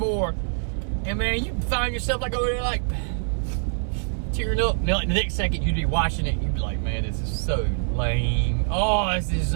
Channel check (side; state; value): left; silent; digital silence